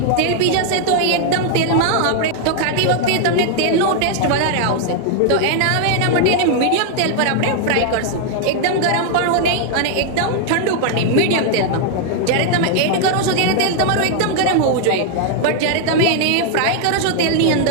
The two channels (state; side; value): different; both; correlation 0.00